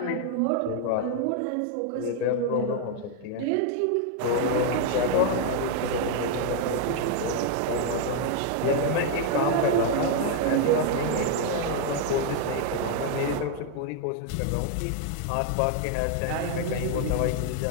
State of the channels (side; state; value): both; different; correlation 0.00